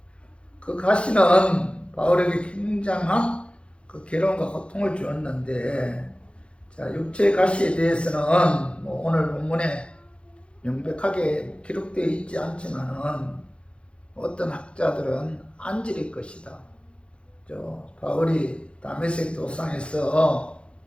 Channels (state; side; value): late; right; 0.058 ms